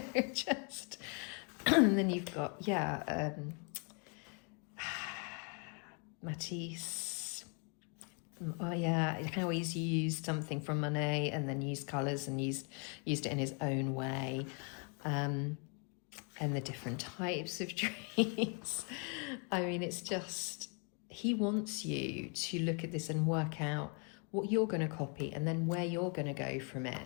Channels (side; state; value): right; quieter; 37.6 dB